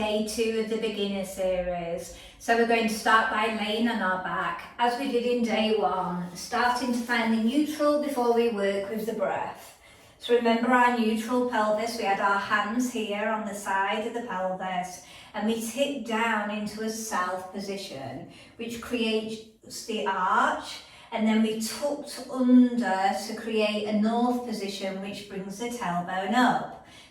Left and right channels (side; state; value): both; identical; correlation 1.00